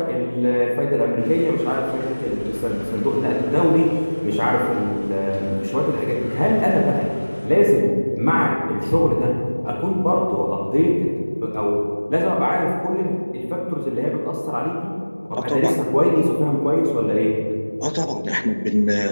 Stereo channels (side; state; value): both; inverted; correlation -1.00